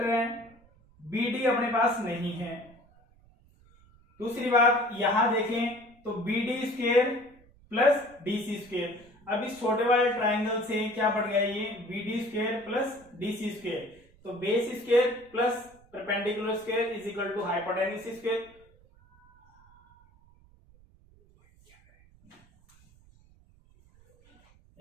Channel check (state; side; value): noise; right; rumble, 28 dB below the sound